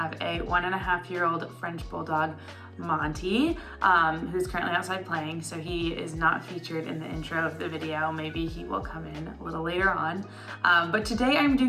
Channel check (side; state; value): both; identical; correlation 1.00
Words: a 1.5-year-old French Bulldog, Monte, who's currently outside playing, so he is not featured in the intro of the video. Maybe he will come in a little later on. But today I'm